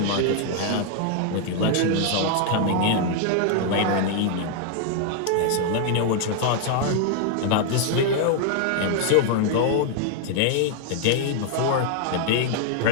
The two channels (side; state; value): both; different; correlation 0.00